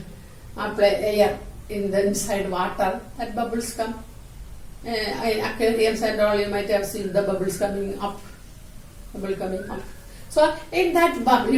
apply air in the inside water, that bubbles come. In aquarium aquariums and all, you might have seen the bubbles coming up. Bubble coming up. So in that bubble,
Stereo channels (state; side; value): identical; both; correlation 1.00